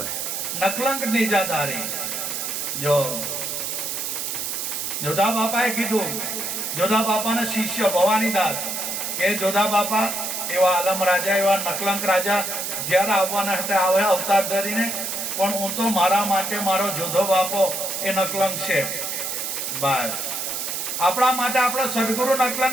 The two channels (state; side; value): noise; right; hiss, 3 dB below the sound